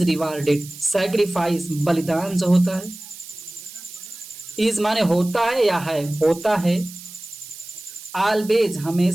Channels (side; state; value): right; noise; hiss, 15 dB below the sound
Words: rewarded, sacrifice बलिदान जो होता है, इज माने होता है या है, होता है, ऑलवेज